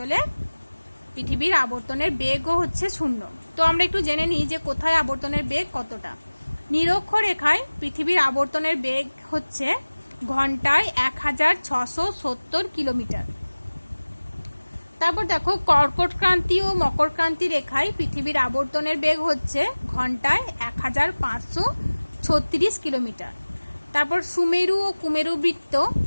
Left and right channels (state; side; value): inverted; both; correlation -1.00